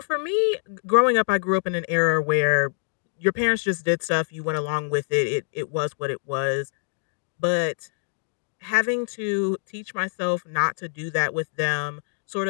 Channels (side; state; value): right; silent; digital silence